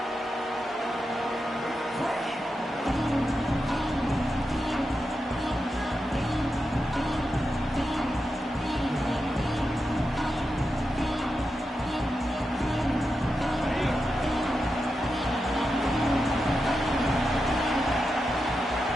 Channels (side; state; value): both; normal; correlation 0.88